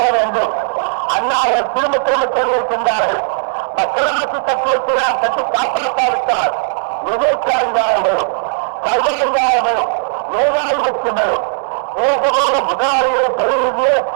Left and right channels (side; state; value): left; silent; digital silence